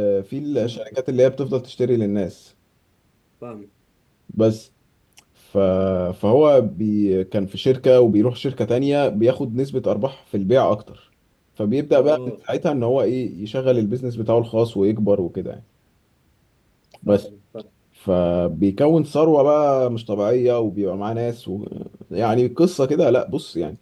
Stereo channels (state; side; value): identical; both; correlation 1.00